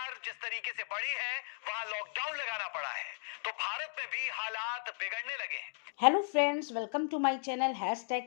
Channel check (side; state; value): right; silent; digital silence